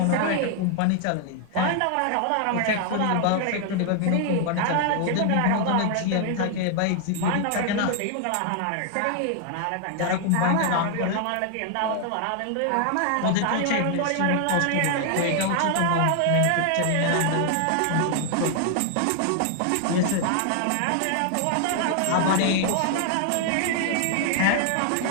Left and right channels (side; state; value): both; different; correlation 0.00